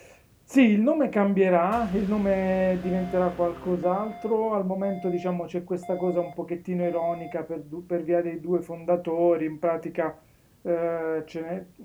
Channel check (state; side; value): identical; both; correlation 1.00